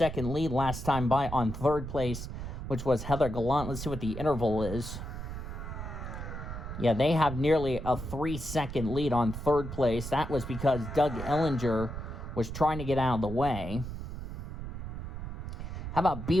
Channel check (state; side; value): noise; right; rumble, 7 dB below the sound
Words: lead last time by on third place, which was Heather Gallant. Let's see what the interval is. Yeah, they have nearly a 3-second lead on third place. That was because Doug Ellinger was trying to get out of the way. How about